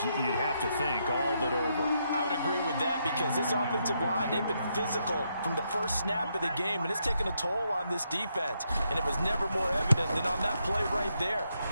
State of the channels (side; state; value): both; inverted; correlation -0.79